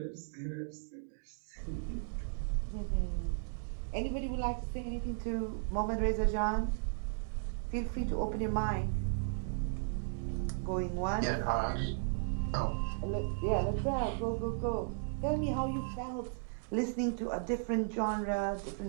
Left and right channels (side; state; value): left; silent; digital silence